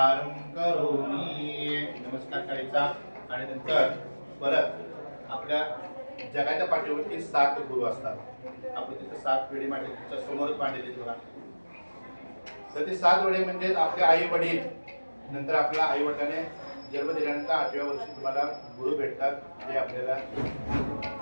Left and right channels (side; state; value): both; inverted; correlation -1.00